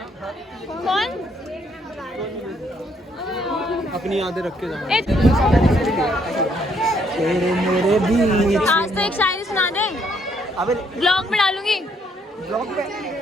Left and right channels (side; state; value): both; normal; correlation 0.70